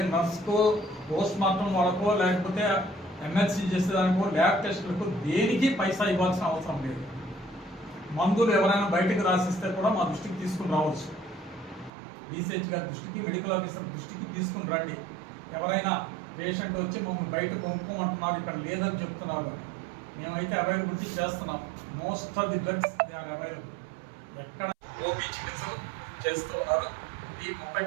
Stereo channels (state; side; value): drops out; left; at 11.9 s